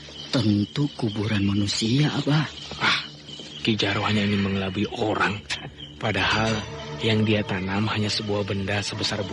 tentu kuburan manusia, Abah. Ki Jaro hanya ingin mengelabui orang. Padahal yang dia tanam hanya sebuah benda sebesar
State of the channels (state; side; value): identical; both; correlation 1.00